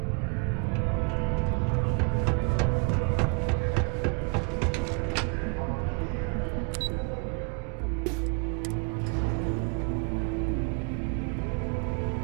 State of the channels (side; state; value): left; quieter; 36.1 dB